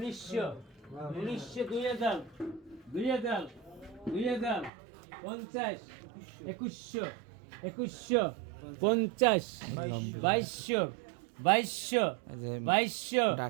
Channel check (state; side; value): drops out; left; at 4.7 s